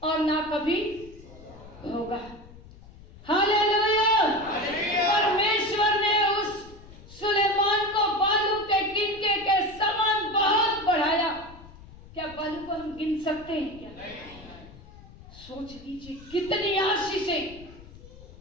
और ना कभी होगा। हालेलुया। परमेश्वर ने उस सुलेमान को बालू के गिनके के समान बहुत बढ़ाया। क्या बालू को हम गिन सकते हैं क्या? सोच लीजिए कितनी आशीषें।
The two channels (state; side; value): noise; left; rumble, 20 dB below the sound